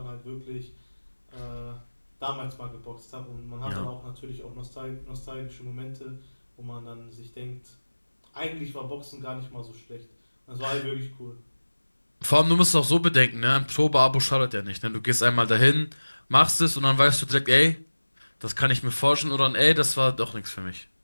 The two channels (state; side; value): inverted; both; correlation -1.00